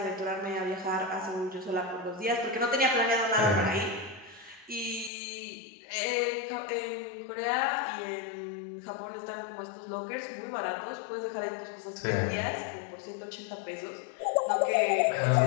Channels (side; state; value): right; drops out; at 5.1 s